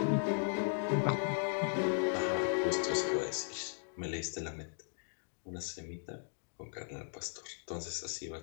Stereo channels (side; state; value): right; silent; digital silence